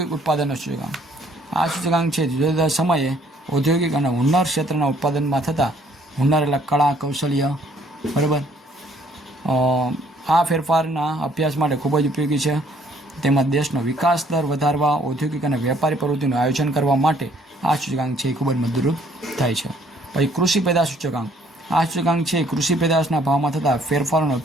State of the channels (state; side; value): normal; both; correlation 0.63